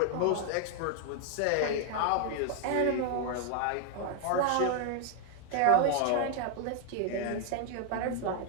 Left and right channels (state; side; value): different; both; correlation 0.01